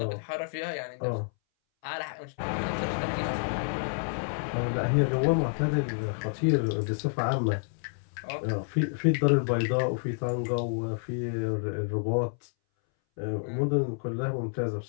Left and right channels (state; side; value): silent; right; 58 dB below the other